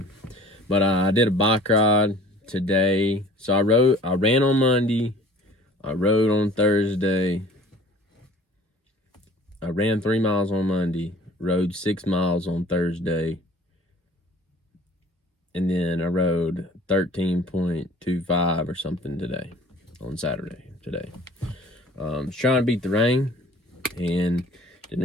But I did a bike ride today. So I ran on Monday, I rode on Thursday, I ran 3 miles on Monday, rode 6 miles on Thursday, and then I rode 13.25 or something today, on Saturday today. Was trying to beat the rain, and didn't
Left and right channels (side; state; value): both; normal; correlation 0.49